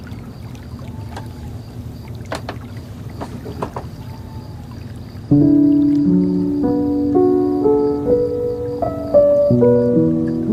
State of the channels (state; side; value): identical; both; correlation 1.00